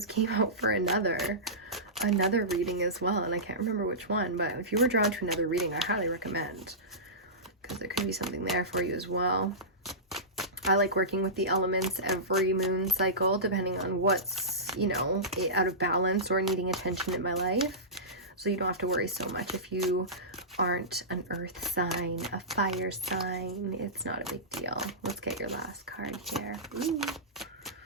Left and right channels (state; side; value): normal; both; correlation -0.18